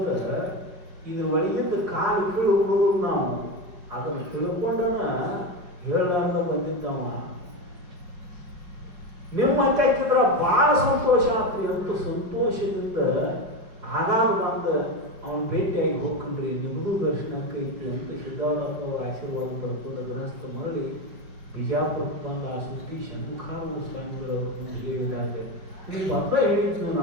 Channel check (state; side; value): late; left; 5.3 ms